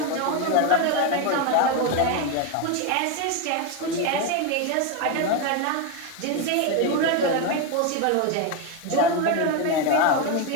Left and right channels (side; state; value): both; different; correlation 0.02